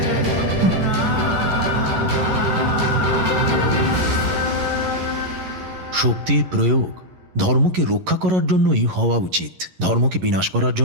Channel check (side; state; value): left; late; 11 ms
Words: শক্তির প্রয়োগ ধর্মকে রক্ষা করার জন্যই হওয়া উচিত, ধর্মকে বিনাশ করার